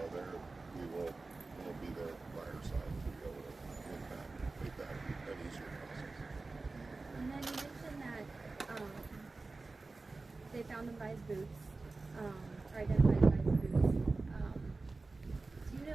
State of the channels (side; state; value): left; quieter; 3.6 dB